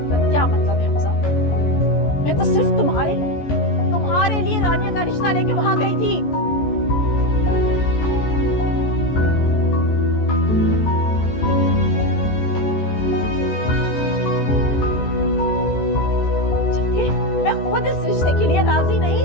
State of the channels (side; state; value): right; late; 14 ms